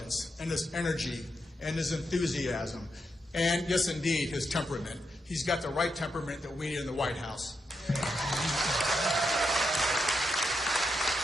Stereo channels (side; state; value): both; normal; correlation 0.83